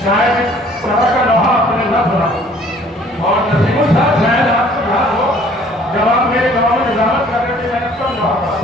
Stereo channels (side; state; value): both; normal; correlation 0.56